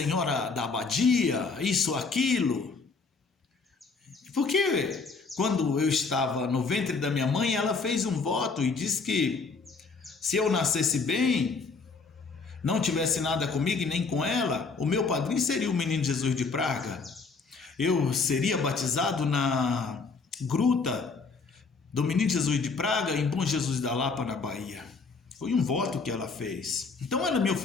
da Abadia, isso, aquilo. Porque quando eu estava no ventre da minha mãe, ela fez um voto e disse que se eu nascesse bem, não tivesse nada comigo e nem com ela, o meu padrinho seria o Menino Jesus de Praga. Eu seria batizado na gruta do Menino Jesus de Praga, em Bom Jesus da Lapa, na Bahia. Foi um voto que ela fez. Então ela me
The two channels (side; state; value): right; quieter; 4.5 dB